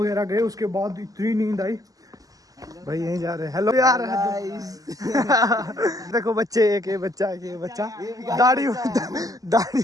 गए उसके बाद इतनी नींद आई भाई। यहीं जा रहे हैं। हेलो यार देखो बच्चे, एक ये बच्चा दाढ़ी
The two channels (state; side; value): late; left; 0.17 ms